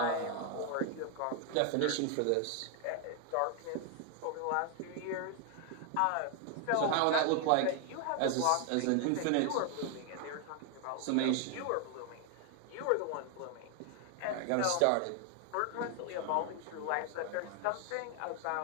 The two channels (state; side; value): different; both; correlation 0.00